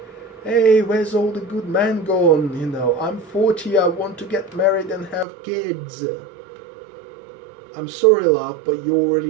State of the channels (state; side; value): drops out; left; at 5.2 s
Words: hey, where's all the good men gone? I'm 40, I want to get married and have kids. I'm sorry, love, but you